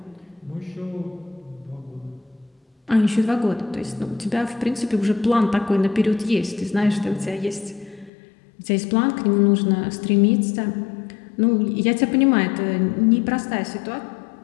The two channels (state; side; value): drops out; right; at 8.1 s